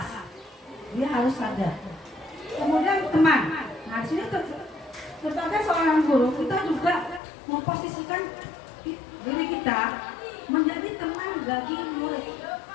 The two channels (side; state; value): right; drops out; at 7.2 s